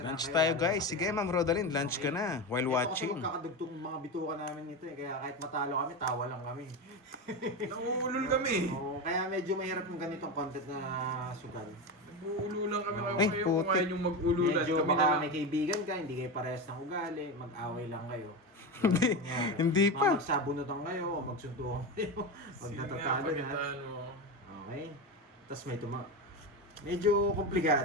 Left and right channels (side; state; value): both; normal; correlation 0.19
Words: Lunch kayo. tayo, guys. Sige, Ma'am Rodaline, lunch ka na while Ito kasi watching. magkakadugtong mga bituka namin ito eh. Kaya kahit matalo kami, tawa lang kami. Nauulol kami. Oo, kaya medyo mahirap yung ganitong content na sugal. Nag-uululan kami Ay, kayo kung putik. ngayon yung mag-ululan. Medyo Kami na baka lang. may kaibigan ka, hindi kayo parehas ng ugali, mag-away lang kayo. Hindi pa. Magsabunutan kayo, o magsuntukan kayo, magtatatalo Sige na. nga, pagkatano. Okay? Tapos may medyo